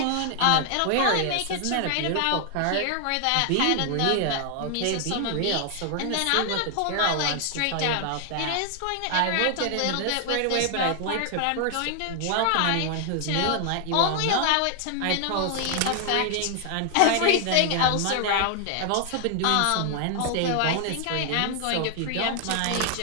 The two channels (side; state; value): both; different; correlation 0.00